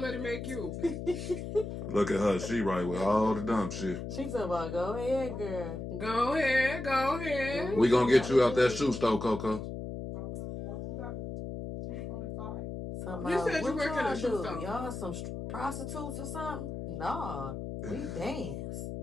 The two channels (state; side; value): noise; left; hum, 6 dB below the sound